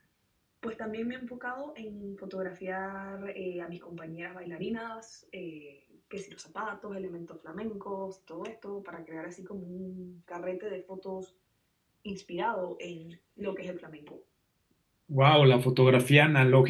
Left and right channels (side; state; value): both; identical; correlation 1.00